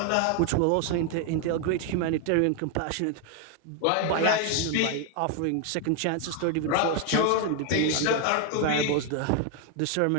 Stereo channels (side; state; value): both; different; correlation 0.01